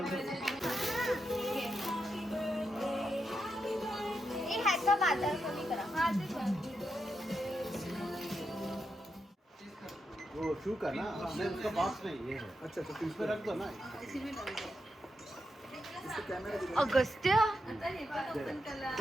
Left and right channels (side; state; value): both; normal; correlation 0.85